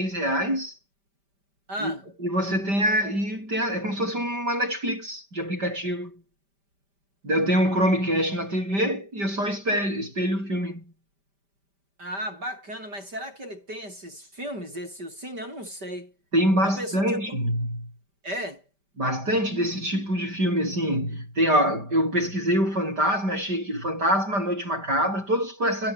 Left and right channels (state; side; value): late; left; 5.1 ms